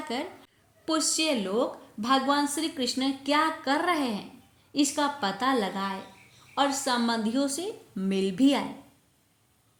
पुष्य लोक भगवान श्री कृष्ण क्या कर रहे हैं इसका पता लगाए और संबंधियों से मिल भी आए।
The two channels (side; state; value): both; identical; correlation 1.00